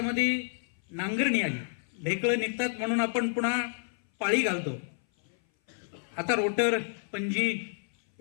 नांगरणी आली, ढेकळं निघतात म्हणून आपण पुन्हा पाळी घालतो. आता रोटर, पंजी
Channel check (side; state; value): right; silent; 57 dB below the other